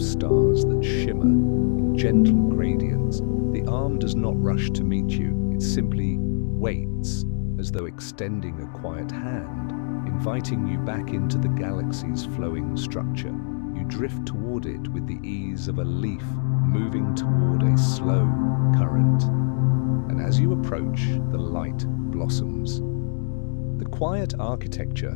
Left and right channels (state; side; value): silent; right; digital silence